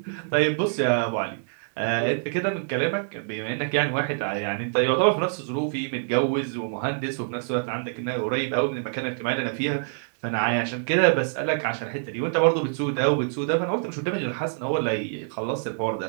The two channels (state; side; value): silent; left; digital silence